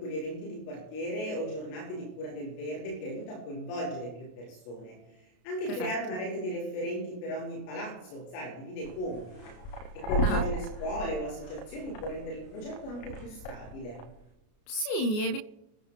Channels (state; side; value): late; right; 33 ms